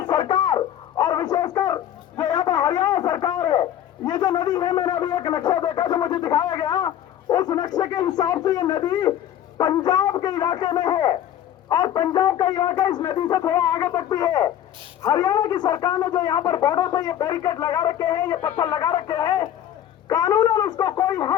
सरकार और विशेषकर जो यहाँ पर हरियाणा सरकार है, ये जो नदी है, मैंने अभी एक नक्शा देखा जो मुझे दिखाया गया, उस नक्शे के हिसाब से ये नदी पंजाब के इलाके में है और पंजाब का इलाका इस नदी से थोड़ा आगे तक भी है। हरियाणा की सरकार ने जो यहाँ पर बॉर्डर पे ये बैरिकेड लगा रखे हैं, ये पत्थर लगा रखे हैं, कानूनन उसको कोई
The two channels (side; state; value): right; quieter; 10.9 dB